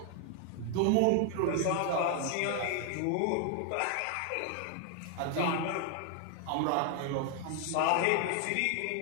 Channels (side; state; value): both; different; correlation 0.00